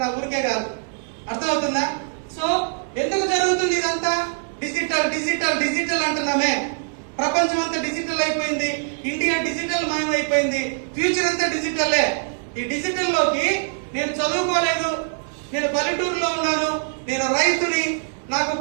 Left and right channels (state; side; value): silent; left; digital silence